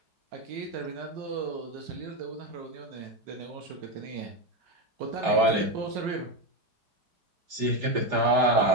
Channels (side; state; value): left; late; 5.0 ms